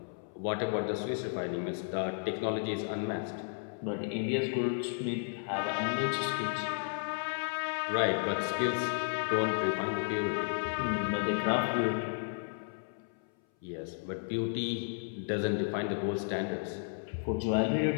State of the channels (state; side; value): silent; right; 56 dB below the other